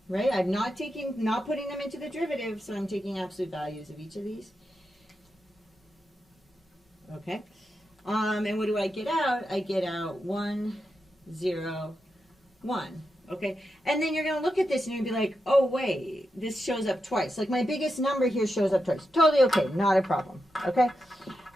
right? I'm not putting them into the derivative, so I'm taking absolute values of each of these. Okay. And what do I get out? I get out 1, 0, 1. Okay. And then you're going to look at this and you're going to be like, oh, wait, this shows up twice. Like my biggest number here shows up twice. Totally okay. Not a problem. Okay.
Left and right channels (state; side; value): normal; both; correlation 0.88